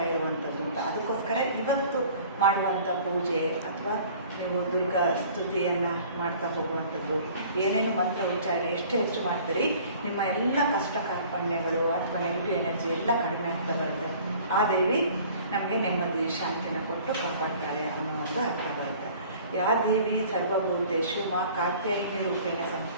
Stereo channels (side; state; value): both; inverted; correlation -0.49